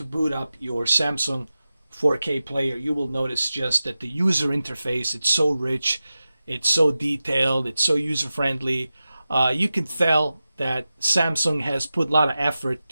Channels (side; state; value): both; inverted; correlation -0.94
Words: boot up your Samsung 4K player, you will notice just that the user interface, it's so rich, it's so detailed, it's so user-friendly. You can tell that Samsung has put a lot of effort